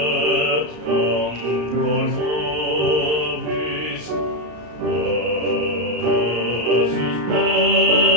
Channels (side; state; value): left; late; 33 ms